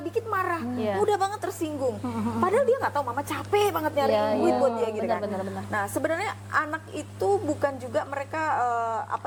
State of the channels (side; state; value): both; identical; correlation 1.00